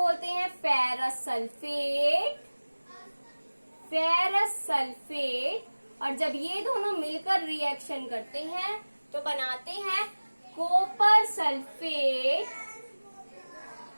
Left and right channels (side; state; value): both; inverted; correlation -1.00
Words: हैं फेरस सल्फेट। फेरस सल्फेट, और जब ये दोनों मिलकर रिएक्शन करते हैं तो बनाते हैं copper sulphate.